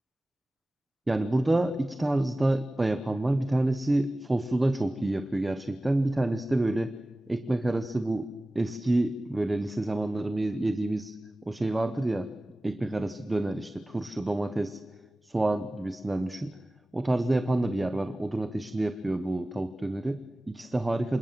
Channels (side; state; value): both; normal; correlation 0.97